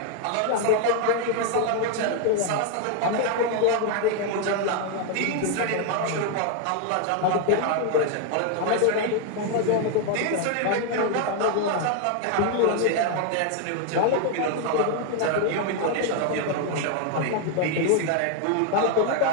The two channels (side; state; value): both; different; correlation 0.01